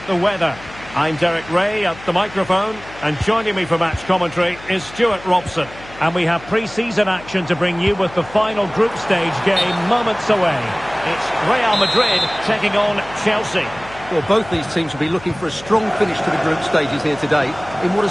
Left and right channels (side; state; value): left; noise; hum, 19 dB below the sound